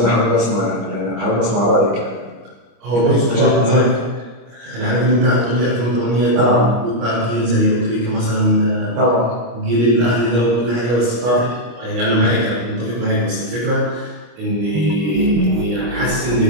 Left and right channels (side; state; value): left; late; 25 ms